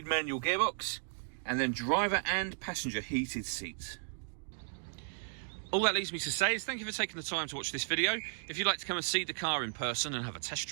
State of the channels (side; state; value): left; silent; digital silence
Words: manual gearbox, and then driver and passenger heated seats. All that leaves me to say is thank you for taking the time to watch this video. If you'd like to come and see the car in person and have a test